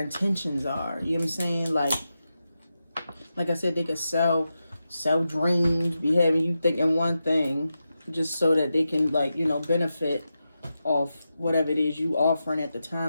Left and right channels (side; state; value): both; inverted; correlation -0.90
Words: are. You know what I'm saying? Like I said, they could sell dreams, be having you thinking one thing just so that they can, like, you know, benefit off whatever it is you offering at the